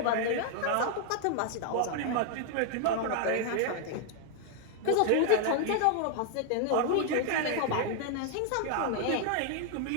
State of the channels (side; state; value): both; different; correlation 0.00